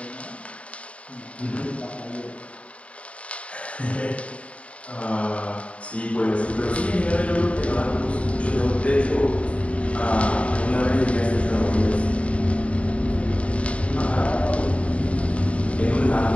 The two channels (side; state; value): right; late; 0.064 ms